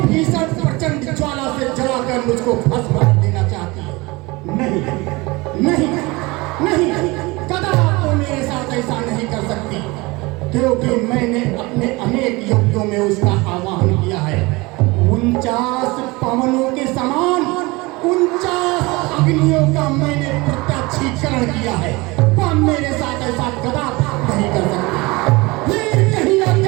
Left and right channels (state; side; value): quieter; left; 23.7 dB